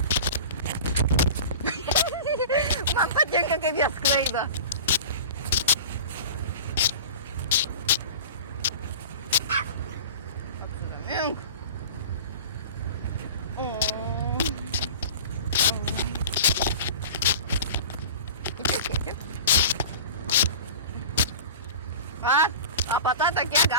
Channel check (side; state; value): both; inverted; correlation -0.36